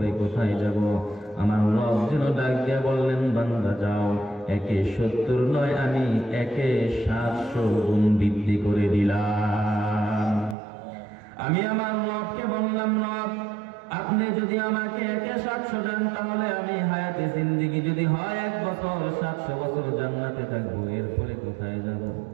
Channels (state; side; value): drops out; left; at 10.6 s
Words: কোথায় যাব? আমার রব যেন ডাক দিয়ে বললেন, বান্দা যাও, 70 নয়, আমি 700 গুণ বৃদ্ধি করে দিলাম। আমি আমার রবকে বললাম, রব আপনি যদি আমাকে 700 দেন, তাহলে আমি হায়াতে জিন্দেগি যদি হয় 1 বছর, 700 বছর জান্নাতে থাকবো, এরপরে কোথায় যাব?